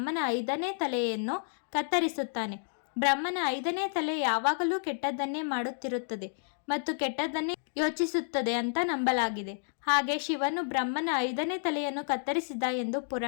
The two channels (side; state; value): right; silent; digital silence